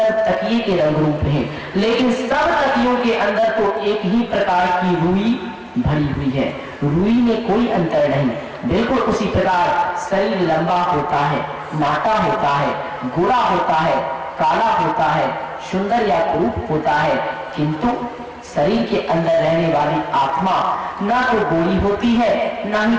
तकिए के रंग रूप हैं, लेकिन सब तकियों के अंदर तो एक ही प्रकार की रुई भरी हुई है। रुई में कोई अंतर नहीं। बिल्कुल उसी प्रकार शरीर लंबा होता है, नाटा होता है, गोरा होता है, काला होता है, सुंदर या कुरूप होता है, किंतु शरीर के अंदर रहने वाली आत्मा ना तो गोरी होती है, ना ही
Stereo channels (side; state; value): both; identical; correlation 1.00